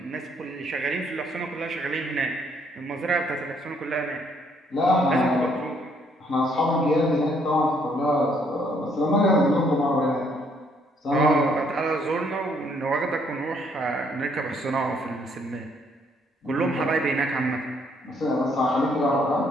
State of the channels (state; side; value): normal; both; correlation 0.68